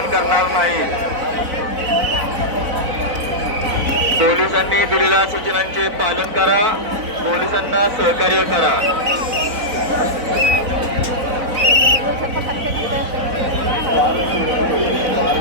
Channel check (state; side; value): late; left; 4.0 ms